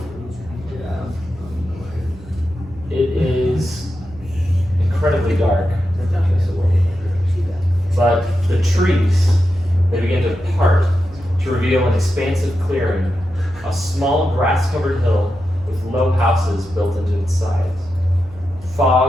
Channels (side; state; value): right; noise; hum, 20 dB below the sound